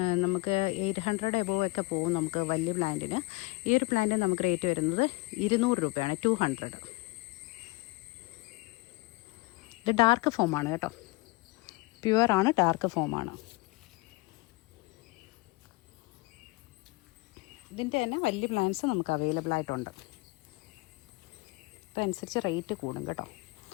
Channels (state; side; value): quieter; right; 24.4 dB